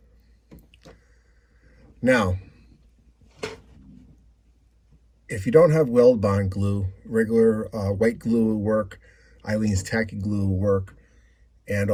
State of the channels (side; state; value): both; identical; correlation 1.00